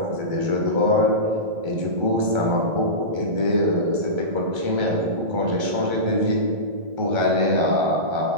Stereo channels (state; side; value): late; left; 1.3 ms